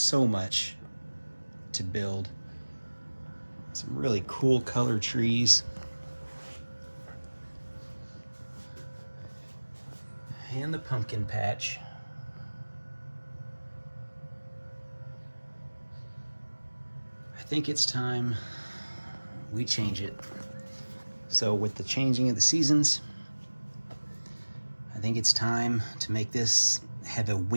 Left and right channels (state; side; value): inverted; both; correlation -1.00